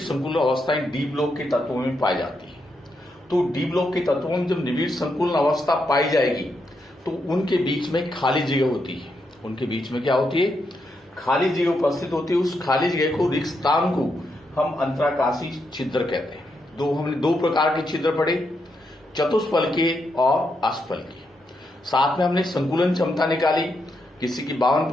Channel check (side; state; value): both; normal; correlation 0.81